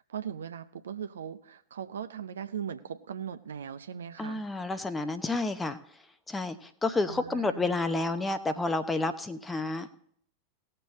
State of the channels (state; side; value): normal; both; correlation 0.62